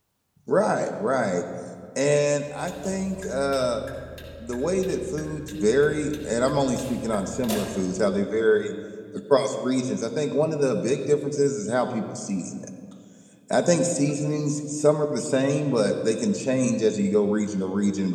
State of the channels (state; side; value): identical; both; correlation 1.00